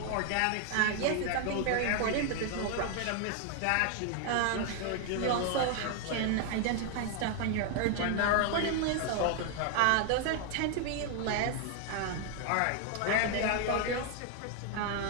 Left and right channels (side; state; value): both; different; correlation 0.00